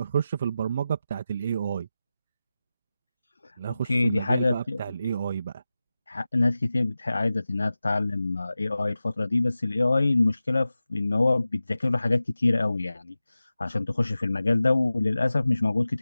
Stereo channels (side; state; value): both; inverted; correlation -0.94